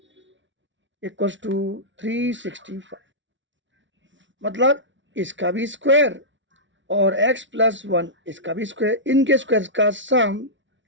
equals to 365। मतलब इसका भी स्क्वायर और x + 1 इसका भी स्क्वायर, इनके स्क्वायर का सम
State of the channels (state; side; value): late; left; 0.55 ms